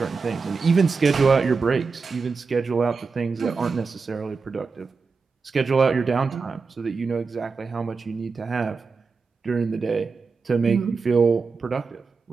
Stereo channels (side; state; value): left; quieter; 4.7 dB